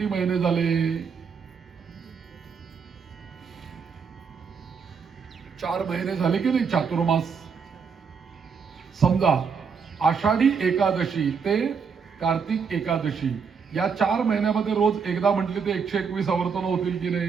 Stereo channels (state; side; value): quieter; left; 6.0 dB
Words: महिने झाले. 4 महिने झाले की नाही चातुर्मास. समजा आषाढी एकादशी ते कार्तिक एकादशी या 4 महिन्यामध्ये रोज एकदा म्हटले ते 121 आवर्तन होतील की